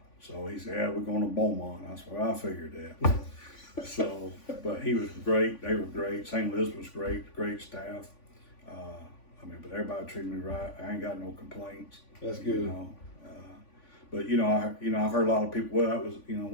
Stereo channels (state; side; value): late; right; 3.5 ms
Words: so he said, yeah, we're going to Beaumont. I said, well, I figured that. So, but he was great. They were great. St. Elizabeth was great staff. But everybody treated me right. I ain't got no complaints. That's good. You know, but I've heard a lot of people. Well, that was